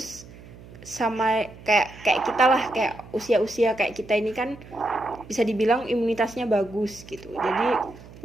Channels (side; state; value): right; noise; hum, 19 dB below the sound